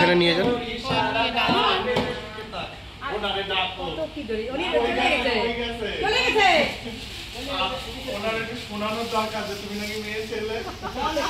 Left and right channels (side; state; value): both; identical; correlation 1.00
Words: নিয়ে যান। শোনানোর দরকার যে তুমি নাকি মেয়ে ছেলে।